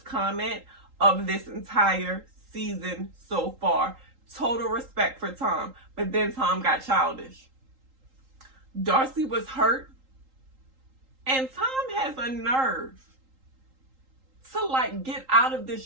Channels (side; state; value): left; late; 3.8 ms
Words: comment of this entire season so far. Total respect for Tom. But then Tom got childish. Darcy was hurt. And Tom has a nerve to get out of this